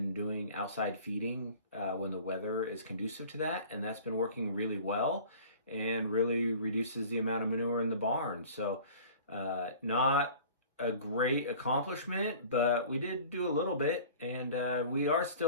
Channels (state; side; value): inverted; both; correlation -0.45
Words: doing outside feeding when the weather is conducive to that, and that's been working really well and really reduces the amount of manure in the barn. So not a great accomplishment, but we did do a little bit, and we are